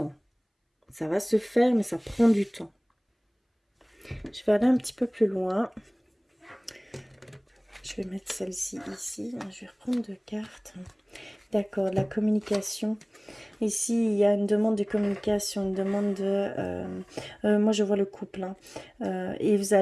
Ça va se faire, mais ça prend du temps. Je vais aller un petit peu plus loin. Je vais mettre celle-ci ici. Je vais reprendre deux cartes. D'accord, la communication. Ici, il y a une demande de communication, une demande de... moi, je vois le couple. Hein. Et vous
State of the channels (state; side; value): identical; both; correlation 1.00